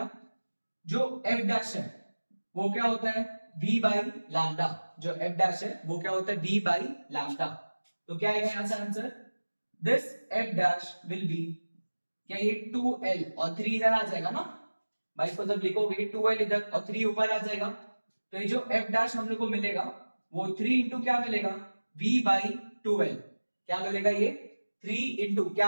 जो f डैश है वो क्या होता है, v बाई लैम्डा। जो f डैश है वो क्या होता है, v बाई लैम्डा। तो क्या आएगा यहां से answer, this f dash will be, क्या ये 2l और 3 इधर आ जाएगा ना भाई, इसको जब लिखोगे 2l इधर और 3 ऊपर आ जाएगा, तो ये जो f डैश हम लोग को मिलेगा वो 3 इंटू क्या मिलेगा, v बाई 2l। क्या मिलेगा ये, 3 इंटू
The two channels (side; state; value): both; inverted; correlation -1.00